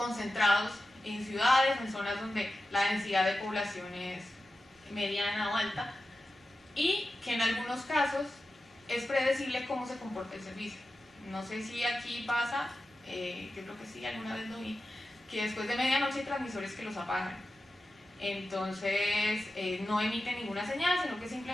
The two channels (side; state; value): both; normal; correlation 0.92